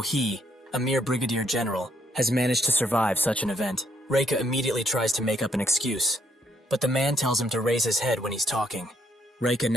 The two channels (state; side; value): normal; both; correlation 0.72